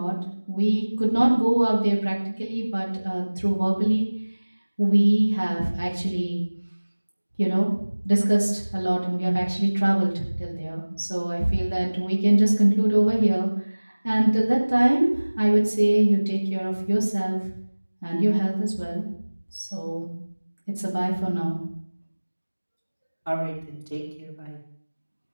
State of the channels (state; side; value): inverted; both; correlation -1.00